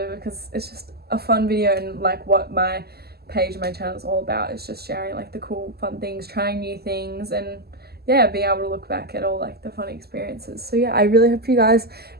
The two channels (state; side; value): late; left; 0.46 ms